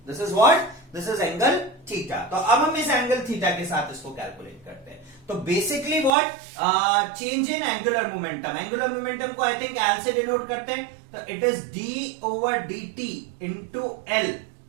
This is what, this is angle theta. तो अब हम इस एंगल थीटा के साथ इसको कैलकुलेट करते हैं। तो basically what, change in angular momentum. Angular momentum को आई थिंक एल से डिनोट करते हैं, तो it is D over D T into L,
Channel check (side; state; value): left; drops out; at 6.1 s